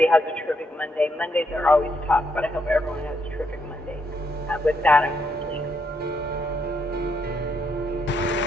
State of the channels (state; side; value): normal; both; correlation 0.77